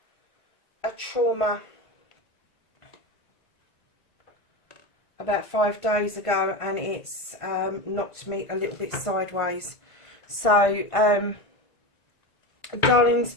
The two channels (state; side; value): late; right; 1.9 ms